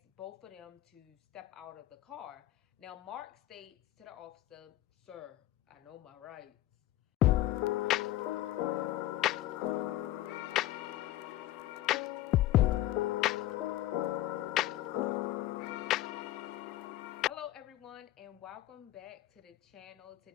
both of them to step out of the car. Now, Mark states to the officer, "Sir, I know my rights." Hello everyone and welcome back to the channel.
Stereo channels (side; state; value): right; quieter; 15.3 dB